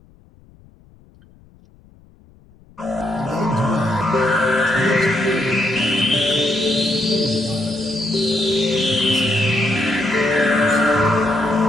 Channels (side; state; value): left; noise; rumble, 28 dB below the sound